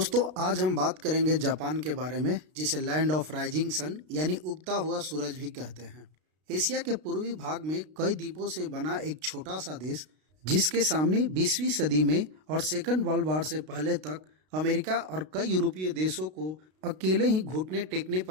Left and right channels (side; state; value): left; late; 32 ms